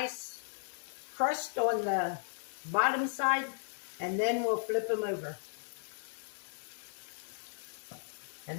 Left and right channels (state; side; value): silent; right; digital silence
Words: crust on the bottom side, and then we'll flip them over. And